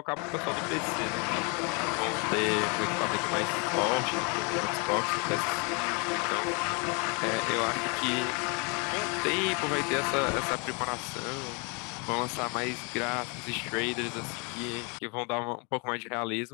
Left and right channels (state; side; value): quieter; right; 32.9 dB